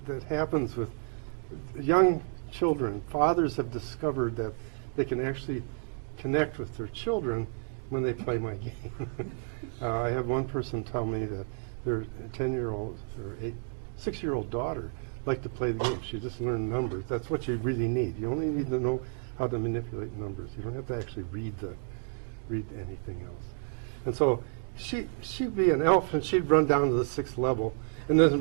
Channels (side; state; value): left; silent; 57 dB below the other